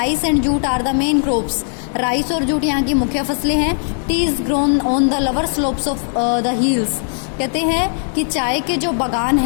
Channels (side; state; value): right; silent; 65 dB below the other